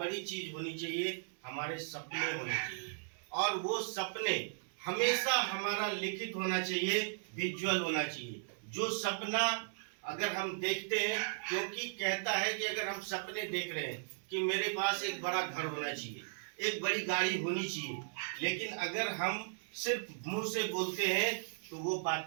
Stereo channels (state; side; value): silent; left; 53 dB below the other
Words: चीज होनी चाहिए, हमारे सपने होने चाहिए। और वो सपने हमेशा हमारा लिखित होना चाहिए, विजुअल होना चाहिए। जो सपना अगर हम देखते हैं, क्योंकि कहता है कि अगर हम सपने देख रहे हैं कि मेरे पास एक बड़ा घर होना चाहिए, एक बड़ी गाड़ी होनी चाहिए, लेकिन अगर हम सिर्फ मुंह से बोलते हैं तो वो